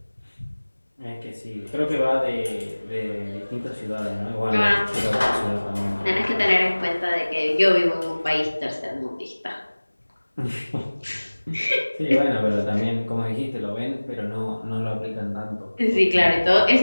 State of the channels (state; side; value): inverted; both; correlation -1.00